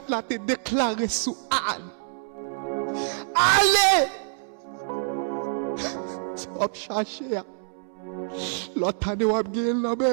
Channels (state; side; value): silent; left; 61 dB below the other